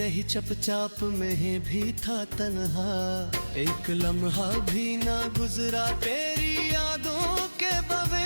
चपचाप में भी था तन्हा। एक लम्हा भी ना गुजरा तेरी यादों के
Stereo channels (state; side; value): inverted; both; correlation -1.00